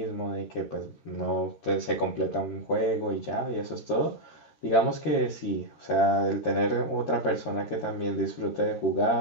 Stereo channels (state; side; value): late; right; 13 ms